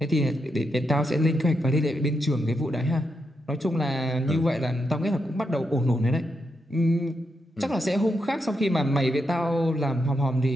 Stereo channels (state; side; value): normal; both; correlation 0.83